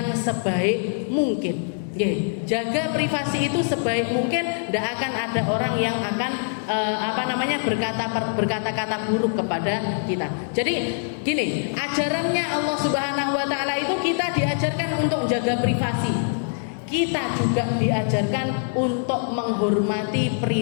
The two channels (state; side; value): silent; right; digital silence